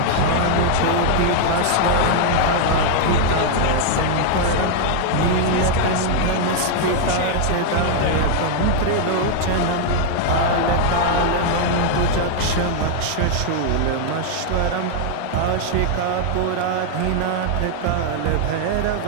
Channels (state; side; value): different; both; correlation 0.00